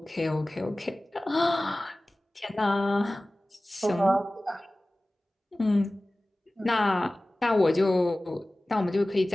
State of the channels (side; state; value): both; normal; correlation 0.97